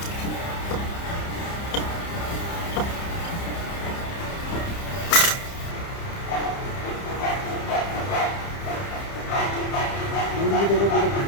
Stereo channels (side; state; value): right; late; 30 ms